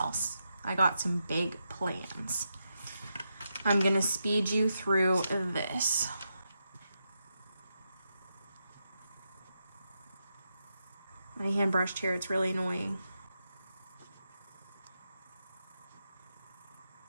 I got some big plans. I'm going to speed you through this. My hand brushed here, it's really annoying.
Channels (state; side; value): inverted; both; correlation -0.85